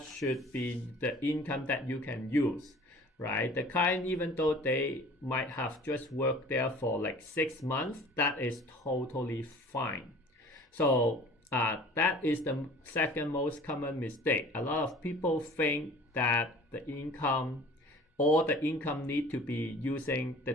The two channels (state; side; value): normal; both; correlation 0.46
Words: should be the income that you can use, right? The client, even though they might have just worked there for like 6 months, that is totally fine. So that is the second most common mistake. A lot of people think that the income need to be using the